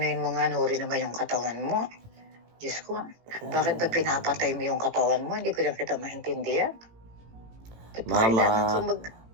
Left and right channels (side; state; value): left; late; 18 ms